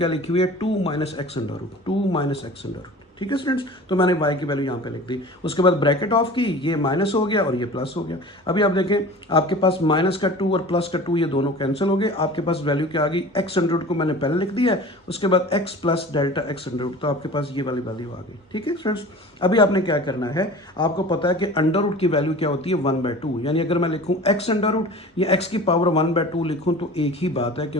लिखी हुई है, 2 minus X under root, 2 minus X under root, ठीक है स्टूडेंट्स। तो मैंने y की वैल्यू यहाँ पे लिख दी। उसके बाद ब्रैकेट ऑफ की, ये माइनस हो गया और ये प्लस हो गया। अभी आप देखें आपके पास माइनस का 2 और प्लस का 2 ये दोनों कैंसिल हो गए। आपके पास वैल्यू क्या आ गई, एक्स अंडर रूट को मैंने पहले लिख दिया है, उसके बाद X plus delta X under root, तो आपके पास ये वाली वैल्यू आ गई, ठीक है स्टूडेंट्स। अभी आपने क्या करना है, आपको पता है कि अंडर रूट की वैल्यू क्या होती है, 1/2। यानी अगर मैं लिखूं एक्स अंडर रूट या एक्स की पावर 1/2 लिखूं तो एक ही बात है,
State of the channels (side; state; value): both; normal; correlation 0.39